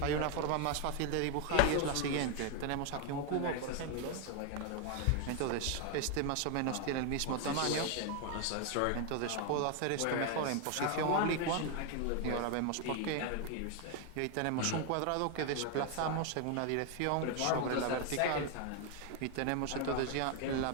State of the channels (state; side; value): different; both; correlation 0.01